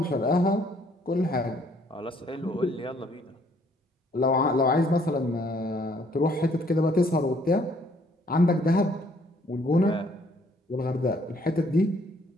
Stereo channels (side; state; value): both; normal; correlation 0.64